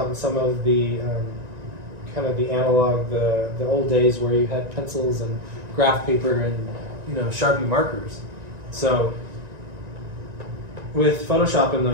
on some of the kind of the analog, the old days where you had pencils and graph paper and, you know, Sharpie markers. So with Photoshop and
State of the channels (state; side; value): late; left; 1.9 ms